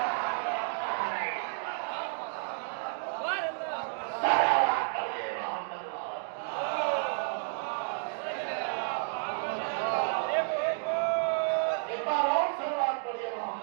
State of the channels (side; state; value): left; silent; 57 dB below the other